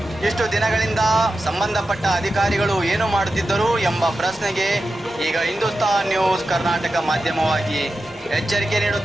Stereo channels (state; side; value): normal; both; correlation 0.91